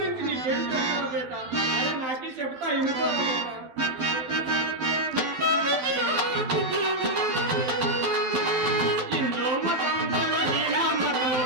నీకేం చెప్పారు బేట. అరే నాకి చెప్తా ఇంకో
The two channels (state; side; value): late; left; 12 ms